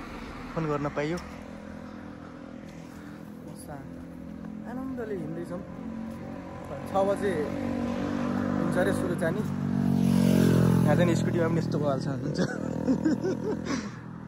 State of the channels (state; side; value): identical; both; correlation 1.00